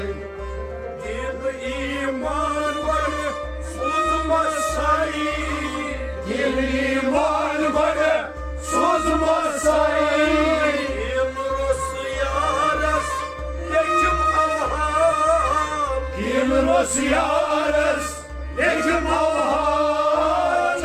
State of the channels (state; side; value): identical; both; correlation 1.00